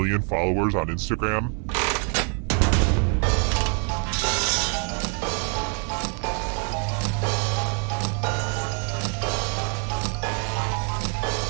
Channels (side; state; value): left; quieter; 39.7 dB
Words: followers on Instagram?